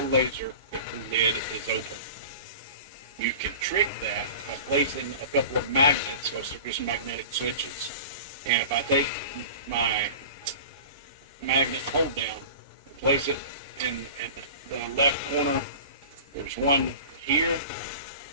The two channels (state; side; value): inverted; both; correlation -0.37